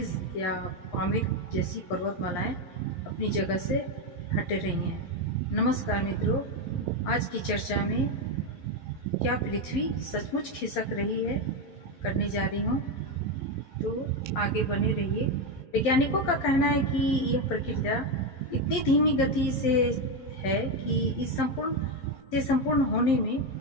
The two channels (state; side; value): late; right; 11 ms